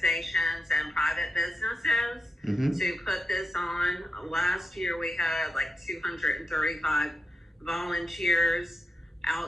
and private businesses to put this on. Last year we had like 235 volunteers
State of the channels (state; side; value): normal; both; correlation 0.88